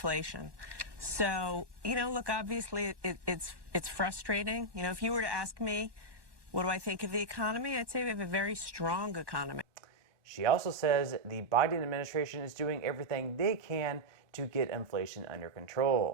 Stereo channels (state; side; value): late; left; 1.1 ms